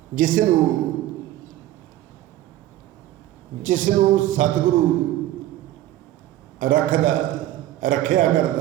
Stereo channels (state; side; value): quieter; left; 14.2 dB